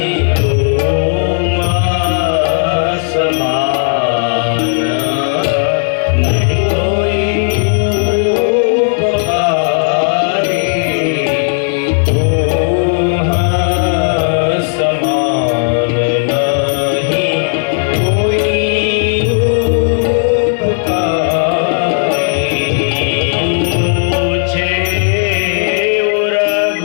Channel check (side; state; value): right; silent; 67 dB below the other